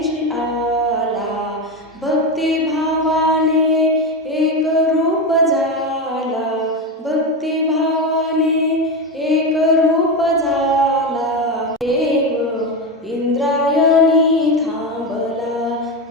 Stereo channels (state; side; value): normal; both; correlation 0.16